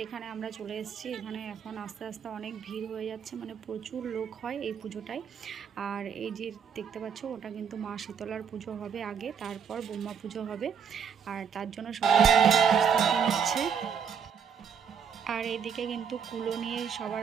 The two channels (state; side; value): quieter; left; 7.0 dB